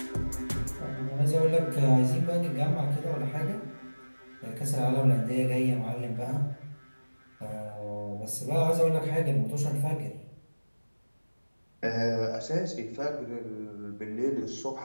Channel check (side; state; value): both; inverted; correlation -1.00